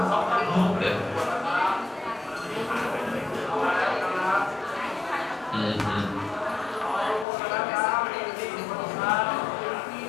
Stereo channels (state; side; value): drops out; right; at 7.2 s